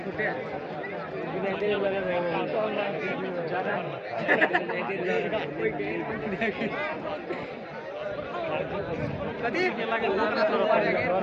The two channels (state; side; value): identical; both; correlation 1.00